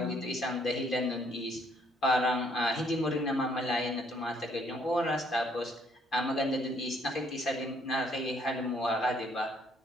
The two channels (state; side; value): normal; both; correlation 0.66